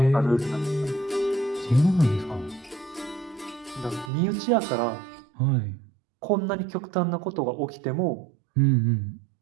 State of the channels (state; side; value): drops out; left; at 4.1 s